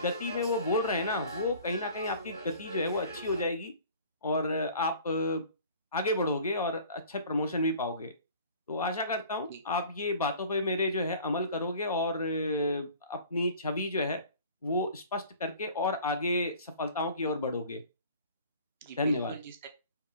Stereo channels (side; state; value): both; inverted; correlation -0.47